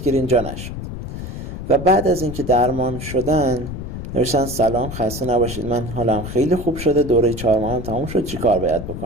جا نشد. و بعد از اینکه درمان شدن نوشتن سلام، خسته نباشید، من حالم خیلی خوب شده، دوره 4 ماه هم تموم شد، چی کار باید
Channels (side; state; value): left; noise; rumble, 8 dB below the sound